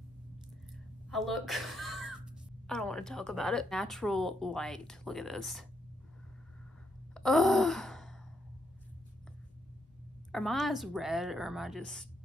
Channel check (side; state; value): both; normal; correlation 0.78